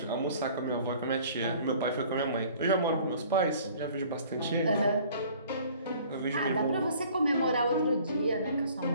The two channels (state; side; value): inverted; both; correlation -0.52